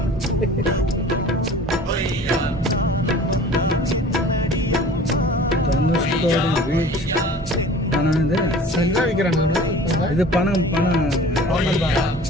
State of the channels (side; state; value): both; normal; correlation 0.44